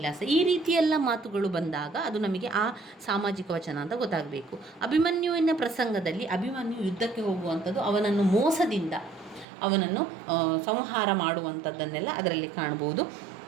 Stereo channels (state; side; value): drops out; left; at 9.5 s